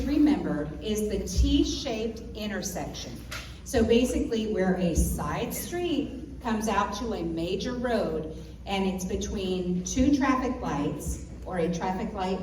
remember is the T-shaped intersection. So basically where a side street comes out to a major road and it's between two traffic lights or a traffic light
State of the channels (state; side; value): identical; both; correlation 1.00